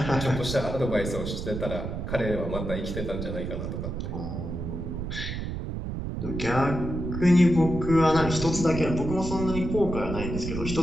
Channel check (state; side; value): noise; right; rumble, 5 dB below the sound